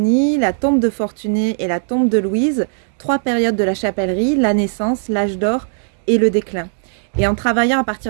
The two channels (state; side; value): silent; left; digital silence